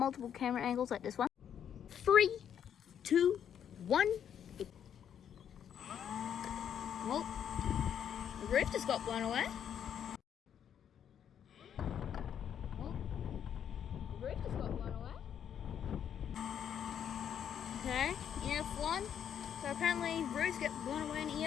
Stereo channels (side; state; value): right; quieter; 8.9 dB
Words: camera angles like this one. 3, 2, 1. Well, the roof just got blown away. Roof just got blown away. Okay, Ef1. So apparently roofs get blown away in